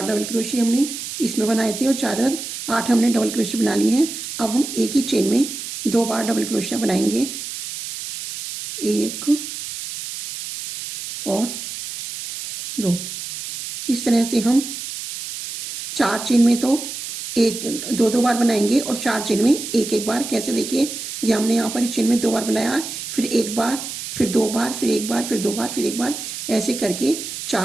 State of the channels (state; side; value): noise; right; hiss, 8 dB below the sound